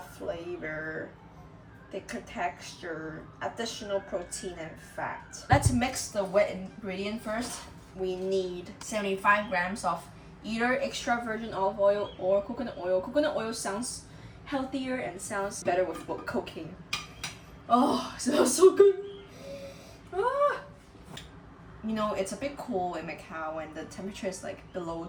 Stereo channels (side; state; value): both; identical; correlation 1.00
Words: thicker texture, additional protein and fat. Let's mix the wet ingredient first. We need 75 grams of either extra virgin olive oil or coconut oil. Coconut oil sounds healthier and sounds better with cooking. Oh, it smells so good. Ah. You know, it's a bit cool in Macau when the temperature is like below